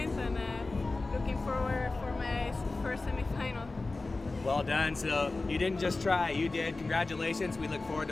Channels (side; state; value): right; quieter; 3.4 dB